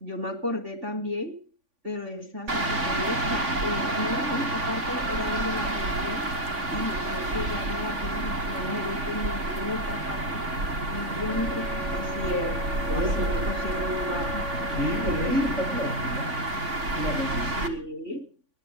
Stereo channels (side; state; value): left; late; 3.5 ms